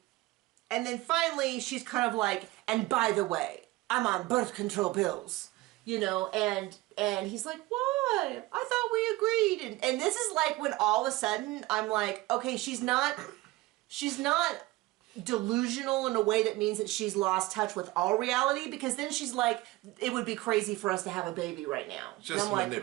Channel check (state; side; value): quieter; left; 19.3 dB